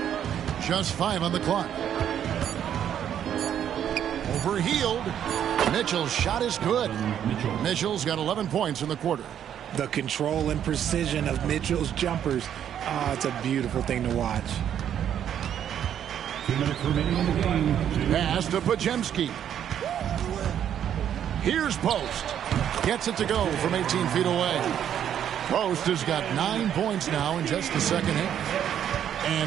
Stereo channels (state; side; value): quieter; left; 9.7 dB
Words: Just 5 on the clock. Overhealed. Mitchell's shot is good. Mitchell's got 11 points in the quarter. The control and precision of Mitchell's jumpers. Oh, it's a beautiful thing to watch. 2 minutes remaining in the game. Pass to Podziemski. Here's Post. Gets it to go from 18 feet away. Post has got 9 points now in just the second half.